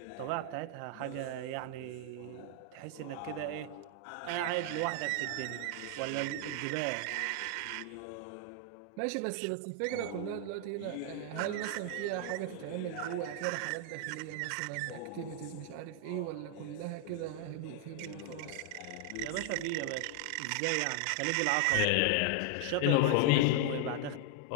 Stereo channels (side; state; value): both; different; correlation 0.00